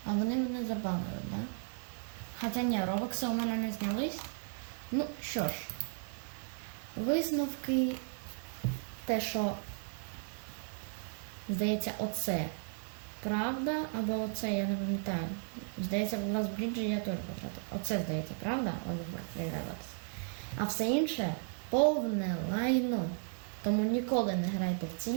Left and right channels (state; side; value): silent; left; 54 dB below the other